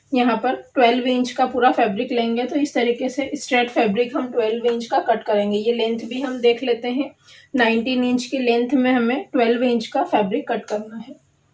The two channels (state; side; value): identical; both; correlation 1.00